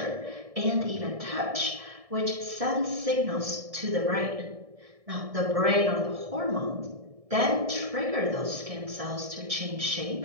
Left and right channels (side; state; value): left; late; 1.7 ms